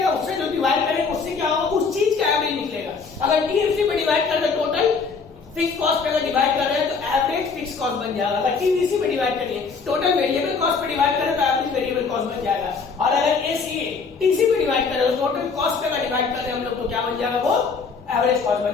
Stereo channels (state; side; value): quieter; right; 5.0 dB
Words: उससे जो डिवाइड करेंगे उससे क्या होगा, उस चीज का एवरेज निकलेगा। अगर टीएफसी पे डिवाइड कर दे टोटल फिक्स कॉस्ट पे अगर डिवाइड कर रहे हैं तो एवरेज फिक्स कॉस्ट बन जाएगा। अगर टीवीसी पे डिवाइड करेंगे टोटल वेरिएबल कॉस्ट पे डिवाइड करें तो एवरेज वेरिएबल कॉस्ट बन जाएगा। और अगर एसीए टीसी पे डिवाइड करें तो टोटल कॉस्ट पे अगर डिवाइड कर रहे हैं हम लोग तो क्या बन जाएगा, वो एवरेज कॉस्ट